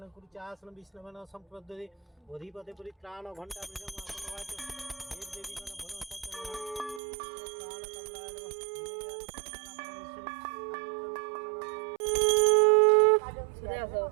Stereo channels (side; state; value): left; drops out; at 7.0 s